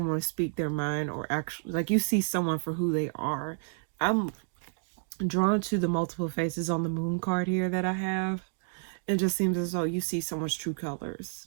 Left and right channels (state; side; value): silent; left; digital silence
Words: speak their mind, or actually like you see someone for who they are. I'm drawn to the multiple faces on the moon card here that I have. It just seems as though you see someone's true colors